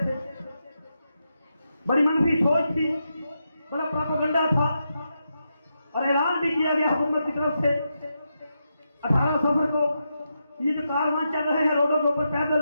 تھے, بڑی منفی سوچ تھی, بڑا پروپیگنڈا تھا اور اعلان بھی کیا گیا حکومت کی طرف سے 18 سفر کو یہ جو کاروان چل رہے ہیں روڈوں کے اوپر پیدل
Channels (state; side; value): inverted; both; correlation -0.85